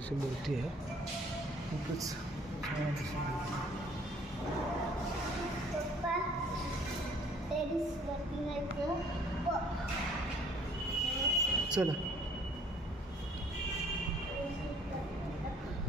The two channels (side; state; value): both; normal; correlation 0.56